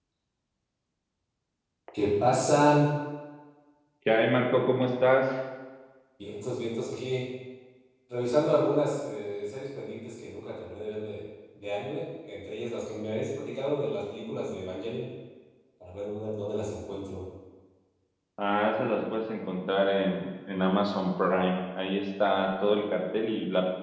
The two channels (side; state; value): both; identical; correlation 1.00